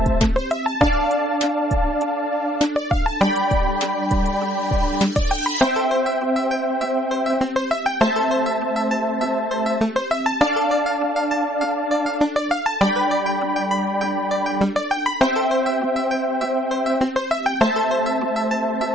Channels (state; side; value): normal; both; correlation 0.68